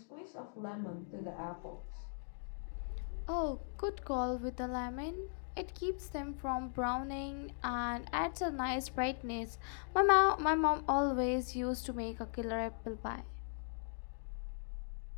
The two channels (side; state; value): right; silent; digital silence